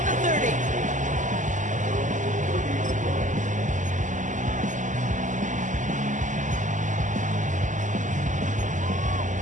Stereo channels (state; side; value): late; left; 0.37 ms